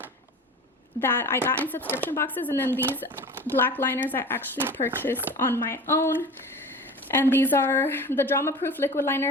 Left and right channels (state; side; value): normal; both; correlation 0.37